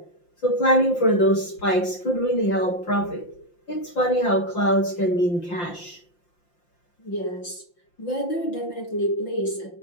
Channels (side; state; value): right; late; 5.8 ms